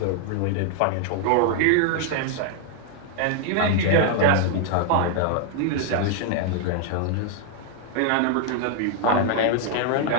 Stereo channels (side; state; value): both; different; correlation 0.00